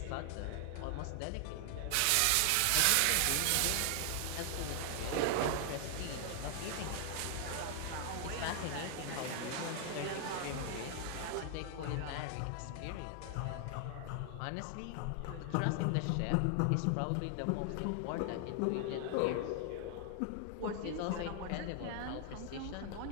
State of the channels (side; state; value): both; different; correlation 0.00